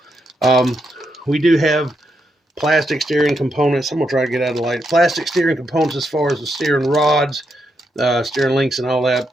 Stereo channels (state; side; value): normal; both; correlation 0.81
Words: We do have plastic steering components. I'm going to try to get out of the light. Plastic steering components as far as the steering rods, steering links and all that.